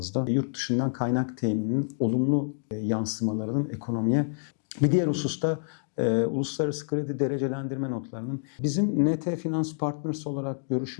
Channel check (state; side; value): silent; right; digital silence